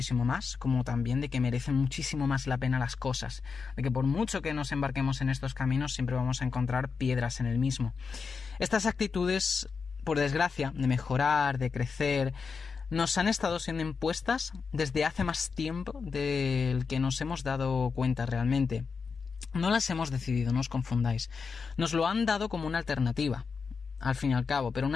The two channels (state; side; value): quieter; right; 5.3 dB